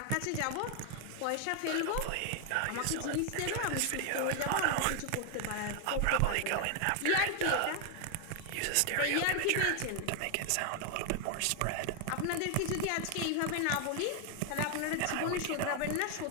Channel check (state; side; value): different; both; correlation 0.00